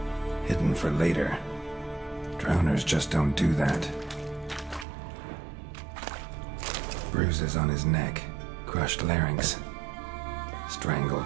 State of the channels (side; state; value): left; drops out; at 4.9 s